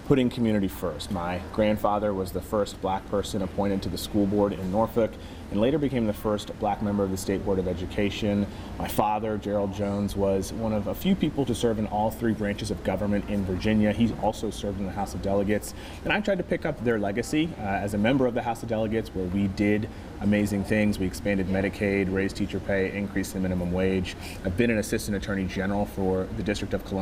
putting community first. My grandfather was the first black person appointed to the school board in Norfolk and later became the first black member of the State Board of Education. My father, Gerald Jones, was one of a few people to serve in all three branches of government in Virginia. He also served in the House of Delegates, and I tried to pick up their legacy as a member of the House of Delegates, where we did amazing things. We expanded Medicaid, raised teacher pay, increased the minimum wage. I've been an assistant attorney general for the District of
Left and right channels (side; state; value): both; identical; correlation 1.00